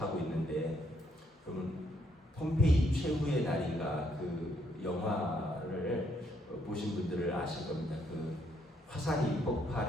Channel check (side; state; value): both; normal; correlation 0.72